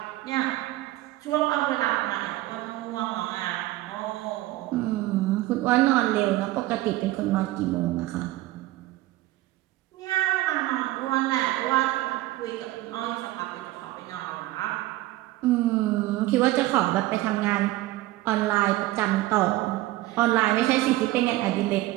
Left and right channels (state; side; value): quieter; left; 17.2 dB